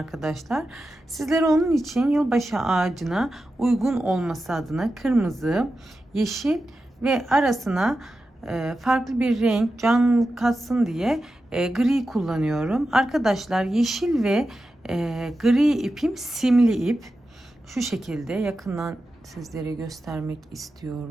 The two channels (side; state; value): both; normal; correlation 0.91